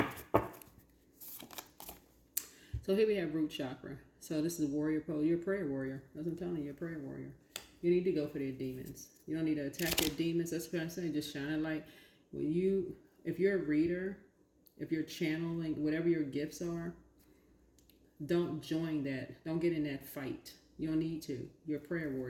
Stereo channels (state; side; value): identical; both; correlation 1.00